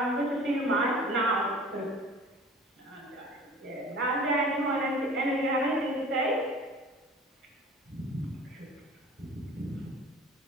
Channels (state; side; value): normal; both; correlation 0.44